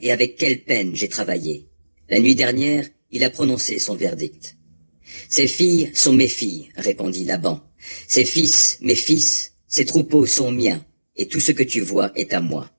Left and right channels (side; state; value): both; inverted; correlation -1.00